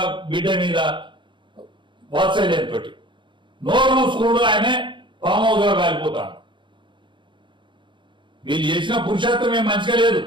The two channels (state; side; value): late; left; 0.23 ms